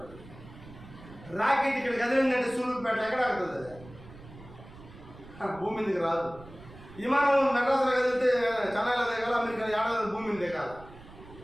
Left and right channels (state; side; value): noise; right; rumble, 18 dB below the sound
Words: రాకెట్ ఇక్కడ కదిలిందంటే సూళ్ళూరుపేట ఎక్కడ ఆడుతుంది, అది భూమి మీదకి రాదు. విమానం మెడ్రాస్లో కదిలితే చెన్నైలో దిగాలి, అమెరికా ఏడాది భూమి మీద దిగాలి.